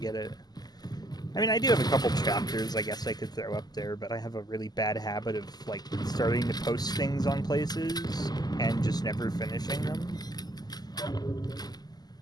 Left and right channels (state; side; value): late; right; 0.20 ms